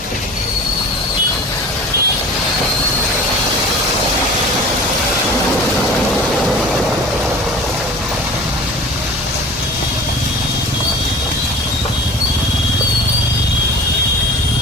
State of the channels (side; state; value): both; normal; correlation 0.41